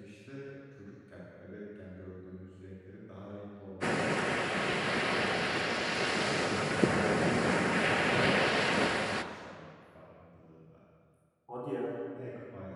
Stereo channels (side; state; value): both; identical; correlation 1.00